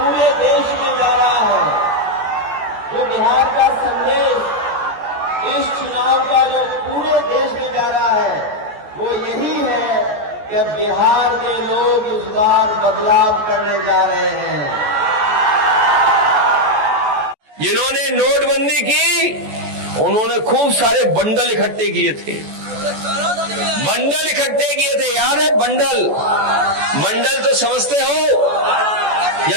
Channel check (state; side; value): late; left; 14 ms